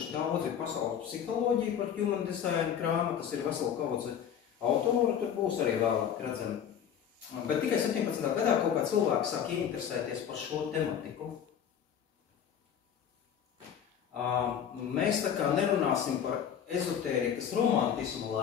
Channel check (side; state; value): right; quieter; 8.7 dB